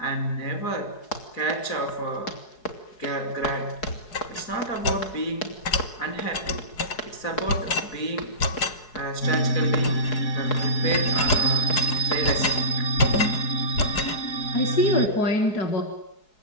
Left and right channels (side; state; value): right; late; 4.7 ms